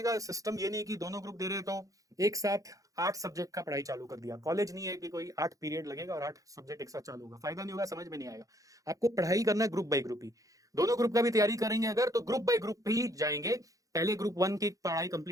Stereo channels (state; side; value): late; left; 0.17 ms